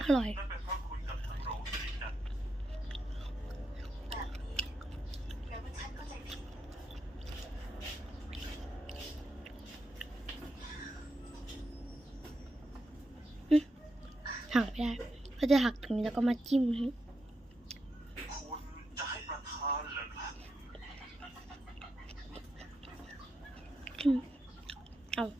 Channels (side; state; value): both; normal; correlation 0.85